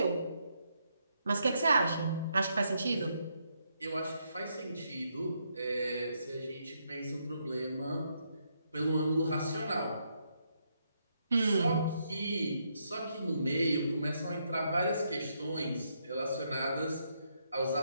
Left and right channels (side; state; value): both; inverted; correlation -0.77